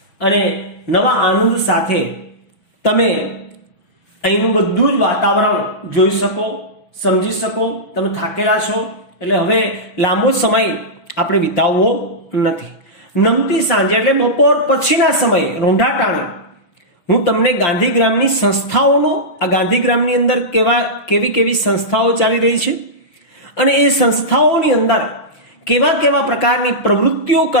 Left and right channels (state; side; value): late; right; 6.2 ms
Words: અને નવા આનંદ સાથે તમે અહીંનું બધું જ વાતાવરણ જોઈ શકો, સમજી શકો. તમે થાકેલા છો એટલે હવે લાંબો સમય આપણે વિતાવવો નથી. નમતી સાંજે એટલે બપોર પછીના સમયે રોંઢા ટાણે હું તમને ગાંધીગ્રામની સંસ્થાઓનો, આ ગાંધીગ્રામની અંદર કેવી સંસ્થાઓ ચાલી રહી છે અને એ સંસ્થાઓની અંદર કેવા પ્રકારની પ્રવૃત્તિઓ